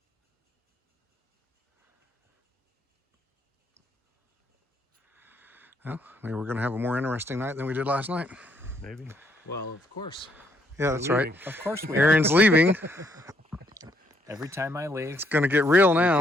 Well, maybe we're going to have a more interesting night than we did last night. Maybe. Well, of course. Yeah, that's right. Of course we Aaron's leaving. Every time I leave, It's going to get real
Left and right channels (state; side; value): normal; both; correlation 0.72